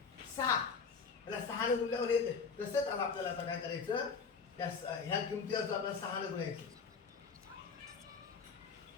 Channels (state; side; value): quieter; right; 5.4 dB